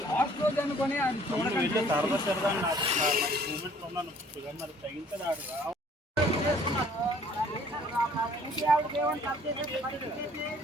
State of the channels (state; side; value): normal; both; correlation 0.57